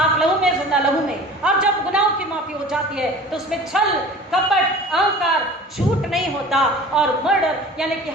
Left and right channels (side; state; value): both; normal; correlation 0.41